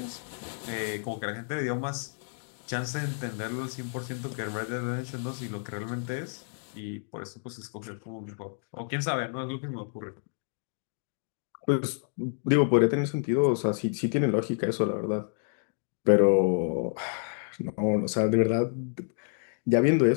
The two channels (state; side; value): silent; right; digital silence